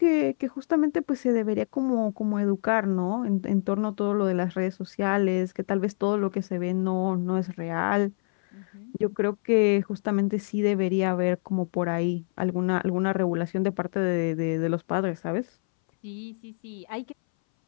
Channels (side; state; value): right; silent; 60 dB below the other